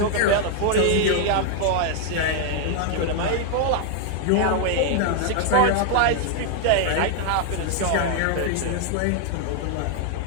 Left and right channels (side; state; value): both; different; correlation 0.00